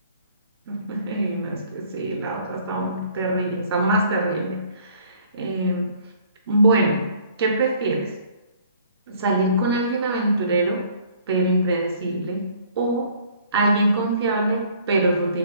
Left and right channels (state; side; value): inverted; both; correlation -0.57